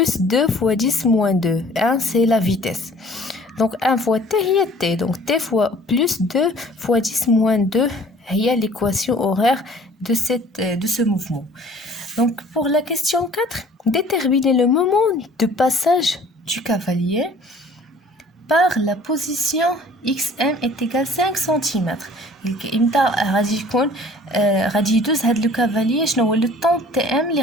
2 fois 10 moins 2. 1 c'est la vitesse. Donc 1 fois t هي t. Donc t fois plus 2 fois 10 moins 2 هي l'équation horaire de ce mouvement. Donc pour la question 4, déterminez le moment de passage du cavalier par la position xm est égal 5 cm. امتى غادي يكون غادي يدوز هاد لو كافاليي شنو هو لو طون تي ام اللي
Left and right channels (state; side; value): normal; both; correlation 0.52